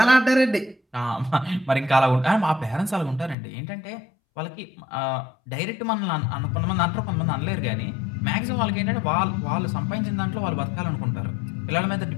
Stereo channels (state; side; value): drops out; right; at 3.4 s